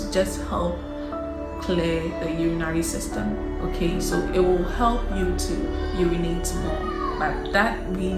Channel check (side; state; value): both; identical; correlation 1.00